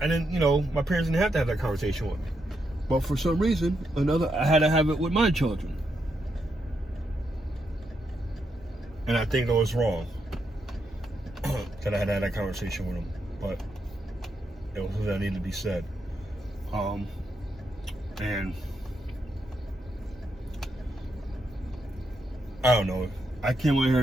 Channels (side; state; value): both; normal; correlation 0.81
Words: My parents didn't have to have that conversation with me. But for some reason, I had to have it with my children. And I think it was wrong that I had to have that conversation with them. But it was something that needed to be said. And I don't know. I came in